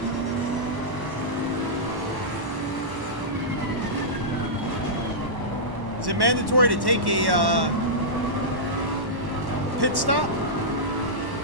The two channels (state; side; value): late; left; 1.1 ms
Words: Is it mandatory to take a pit stop?